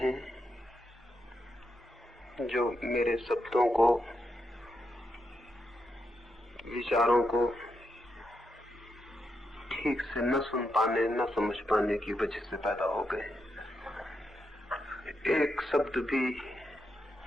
जो मेरे शब्दों को, विचारों को ठीक से न सुन पाने, न समझ पाने की वजह से पैदा हो गए। एक शब्द भी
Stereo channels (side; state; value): both; normal; correlation 0.83